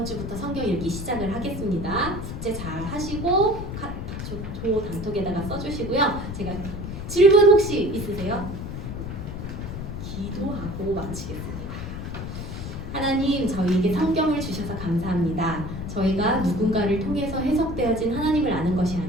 주부터 성경 읽기 시작을 하겠습니다. 숙제 잘 하시고 조 단톡에다가 써주시고요. 제가 질문 혹시 있으세요? 기도하고 마치겠습니다. 하나님, 저희에게 성경을 주셔서 감사합니다. 저희가 누군가를 통해서 해석되어진 하나님을 아는 것이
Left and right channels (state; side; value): noise; left; rumble, 7 dB below the sound